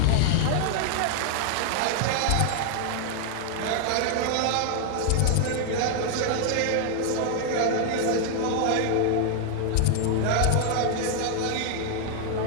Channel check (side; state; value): both; different; correlation 0.00